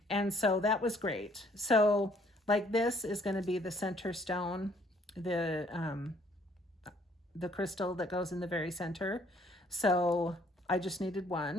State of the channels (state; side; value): normal; both; correlation 0.63